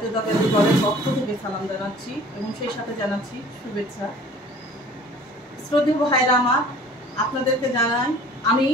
দলের পক্ষ থেকে সালাম জানাচ্ছি এবং সেই সাথে জানাচ্ছি শুভেচ্ছা। শ্রদ্ধেয় ভাইরা আমার, আপনাদেরকে জানাই আমি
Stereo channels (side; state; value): both; normal; correlation 0.48